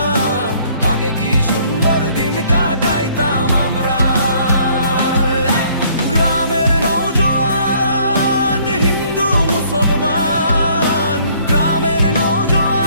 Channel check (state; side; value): inverted; both; correlation -0.61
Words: আগে কি সুন্দর দিন কাটাইতাম আমরা। গ্রামের নওজোয়ান হিন্দু মুসলমান, গ্রামের